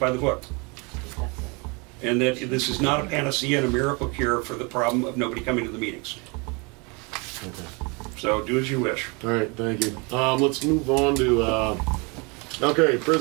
the book. And that this is not a panacea and a miracle cure for the problem of nobody coming to the meetings. So do as you wish. All right, thank you. Let's move on to, okay,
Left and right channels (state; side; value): quieter; left; 30.2 dB